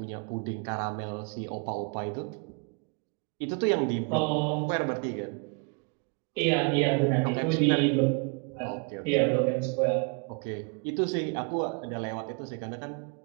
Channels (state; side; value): quieter; left; 34.5 dB